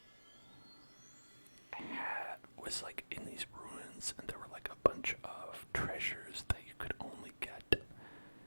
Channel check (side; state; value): both; inverted; correlation -1.00